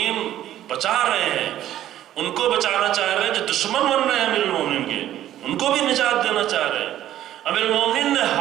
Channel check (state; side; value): quieter; left; 12.4 dB